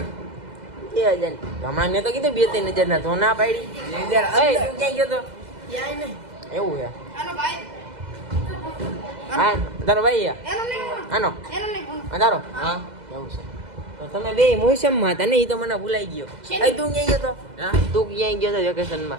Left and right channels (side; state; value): left; late; 2.0 ms